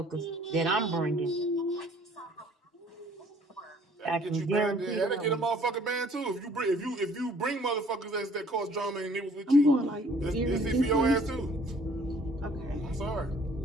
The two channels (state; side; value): normal; both; correlation 0.57